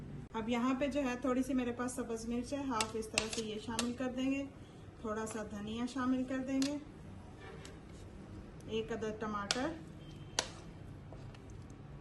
अब यहाँ पे जो है थोड़ी सी मेरे पास सब्ज मिर्च है, हाफ इस तरह से ये शामिल कर देंगे। थोड़ा सा धनिया शामिल कर देंगे। 1 अदद टमाटर,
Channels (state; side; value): identical; both; correlation 1.00